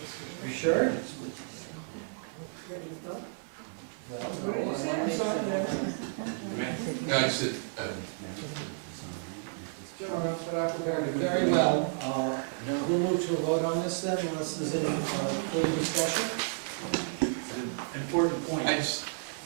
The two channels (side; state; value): left; silent; digital silence